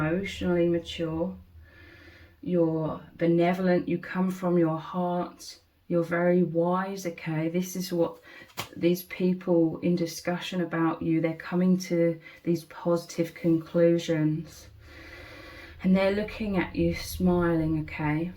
mature, you're benevolent, you come from your heart, you're very wise, okay? This is what these people in discussion about you, they're coming to these positive conclusions. And they're looking at you smiling, okay?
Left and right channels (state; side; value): identical; both; correlation 1.00